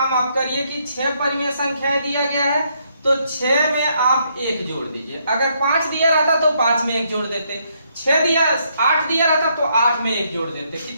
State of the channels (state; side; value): inverted; both; correlation -0.73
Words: आप करिए कि 6 परिमेय संख्याएं दिया गया है तो 6 में आप 1 जोड़ दीजिए। अगर 5 दिया रहता तो 5 में 1 जोड़ देते, 8 दिया रहता तो 8 में 1 जोड़ देते।